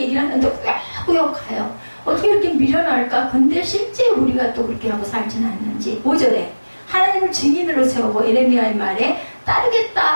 하는데 꾸역꾸역 가요. 어떻게 이렇게 미련할까? 근데 실제 우리가 또 그렇게 하고 살지는 않는지. 5절에 하나님을 증인으로 세우고 예레미야의 말에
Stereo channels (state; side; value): inverted; both; correlation -1.00